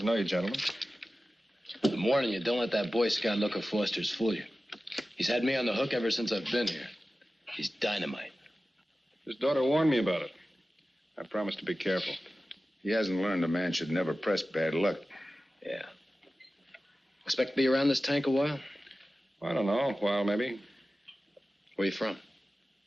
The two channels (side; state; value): both; normal; correlation 0.95